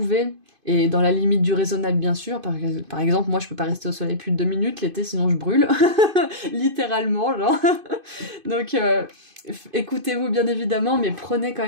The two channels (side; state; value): left; late; 2.5 ms